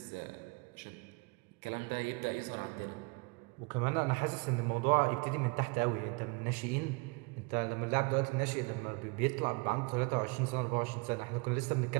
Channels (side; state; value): left; quieter; 28.9 dB